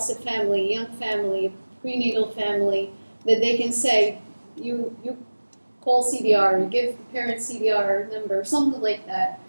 a family, young family, prenatal family, that they can say, you call CDR, you give the parent CDR number, something like that.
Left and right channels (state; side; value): inverted; both; correlation -1.00